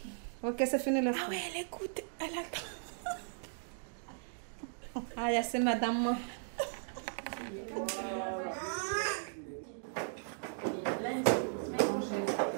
Ok, c'est fini la. Ah ouais, elle écoute, elle attend. Ah, c'est madame.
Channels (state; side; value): silent; left; digital silence